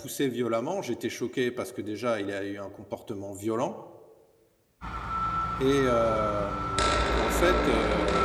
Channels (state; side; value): identical; both; correlation 1.00